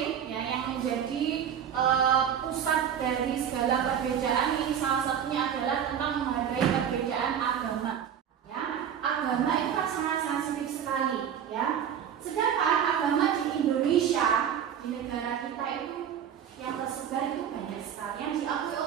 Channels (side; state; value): left; quieter; 8.8 dB